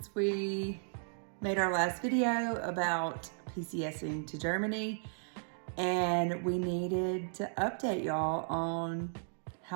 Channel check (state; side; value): silent; left; digital silence